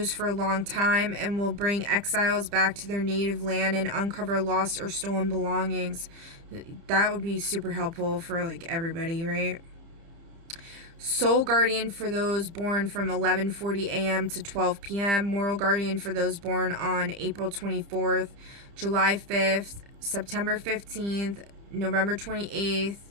for a long time, and will bring exiles back to their native land and uncover lost or stolen belongings. That would be super helpful for like everybody, right? Soul guardian for those born from 11:40 a.m. to 12 p.m. Moral guardian for those born on April 24th, July 5th, September 15th, November 28th,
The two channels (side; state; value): left; late; 30 ms